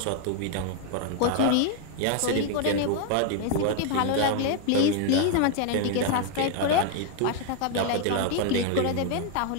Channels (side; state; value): both; different; correlation 0.00